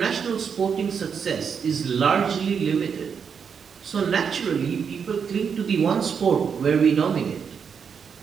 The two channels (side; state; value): left; quieter; 6.7 dB